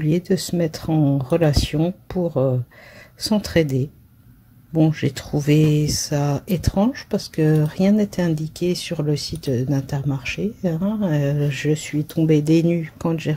de se mettre en relation pour s'entraider. Bon, j'ai trouvé ça étrange parce que rien n'était indiqué sur le site d'Intermarché, hein. Je suis tombée des nues quand j'ai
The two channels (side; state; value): both; identical; correlation 1.00